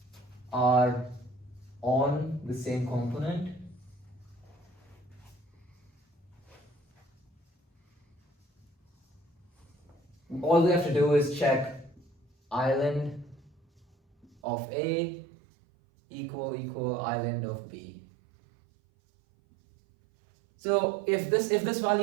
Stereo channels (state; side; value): drops out; left; at 14.4 s